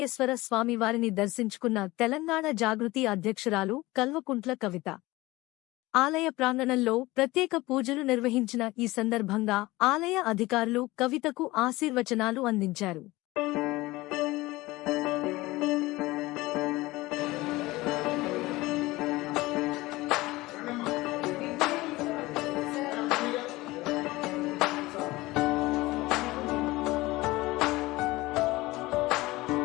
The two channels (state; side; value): quieter; right; 19.9 dB